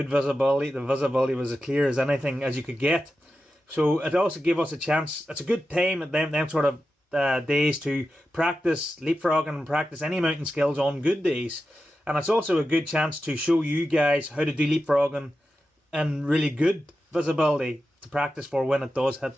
visibility. The visibility was as clear as anything as you could get. So it also gave us a chance. It's a good time at them sort of days to practice leapfrogging and practice any mountain skills on good days. And it's also a good chance to show you guys how to do leapfrogging in really good visibility to practice for when it does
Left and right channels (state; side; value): normal; both; correlation 0.91